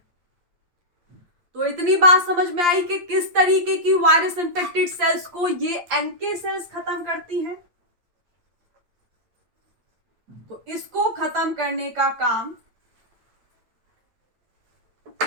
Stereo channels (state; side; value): late; left; 8.5 ms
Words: तो इतनी बात समझ में आई कि किस तरीके की वायरस इन्फेक्टेड सेल्स को ये NK सेल्स खत्म करती हैं। तो इसको खत्म करने का काम